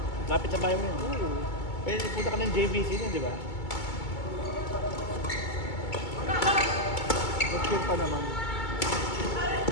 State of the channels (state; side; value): late; right; 2.2 ms